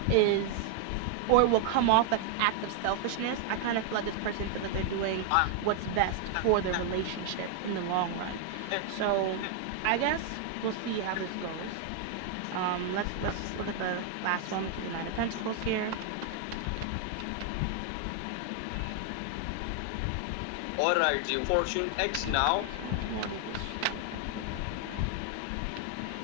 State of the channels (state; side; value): different; both; correlation 0.00